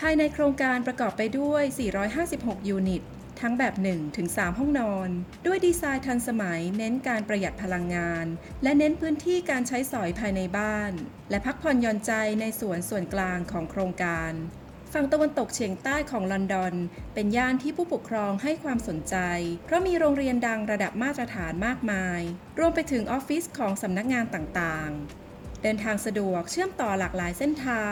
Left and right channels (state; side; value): identical; both; correlation 1.00